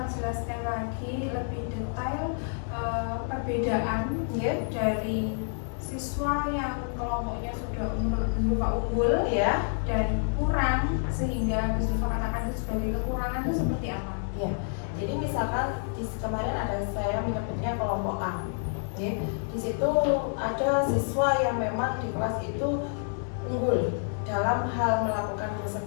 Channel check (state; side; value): silent; right; 59 dB below the other